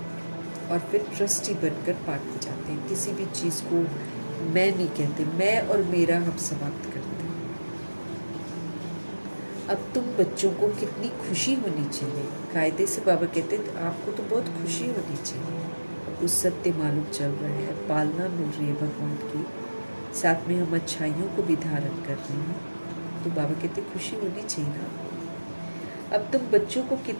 और फिर ट्रस्टी बनकर बांटते जाते हैं। किसी भी चीज़ को मैं नहीं कहते, मैं और मेरा हम समाप्त करते हैं। अब तुम बच्चों को कितनी खुशी होनी चाहिए। कायदे से बाबा कहते हैं आपको तो बहुत खुशी होनी चाहिए। उस सत्य मालूम चल रहा है, पालना मिल रही है भगवान की, साथ में हम अच्छाइयों को भी धारण कर रहे हैं, तो बाबा कहते खुशी होनी चाहिए ना। अब तुम बच्चों को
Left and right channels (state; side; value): inverted; both; correlation -1.00